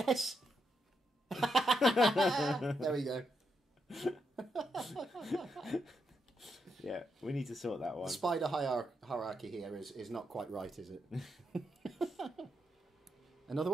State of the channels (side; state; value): both; normal; correlation 0.81